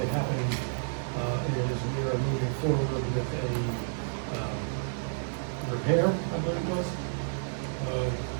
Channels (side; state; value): left; silent; 58 dB below the other